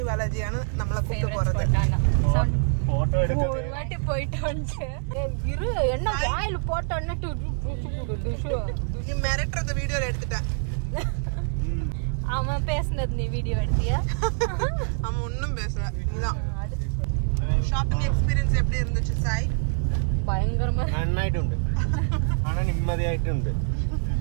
ബാലാജിയാണ് നമ്മളെ കൂട്ടി പോறது. ஒரு வாட்டி போயிட்டு வந்து இரு என்ன வாயில போட்டன்னட்டு நீ மிரட்டுறத வீடியோல எடுத்துட்ட. அவன் பேசுனது நீ வீடியோ எடுத்தியா? அவன் ஒன்றும் பேசல. நீதான். ഷോപ്പിംഗ് എക്സ്പീരിയൻസ് எப்படி இருந்துச்சு സായ്? ഭയങ്കരமா നന്നായിട്ടുണ്ട്. ആണ് നിമ്മതിയായിട്ടുണ്ട്.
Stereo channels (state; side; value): silent; left; digital silence